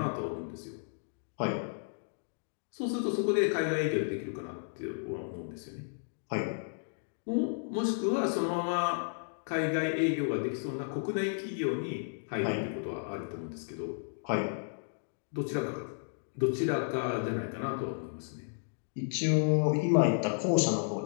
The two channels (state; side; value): silent; right; digital silence